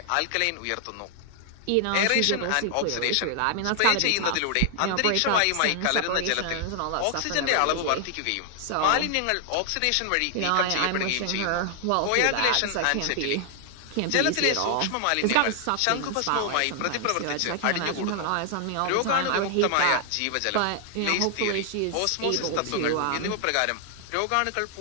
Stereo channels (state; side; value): different; both; correlation 0.00